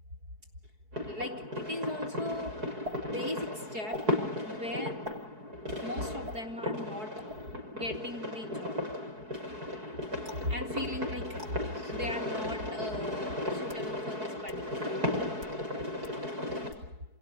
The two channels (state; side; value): late; left; 4.6 ms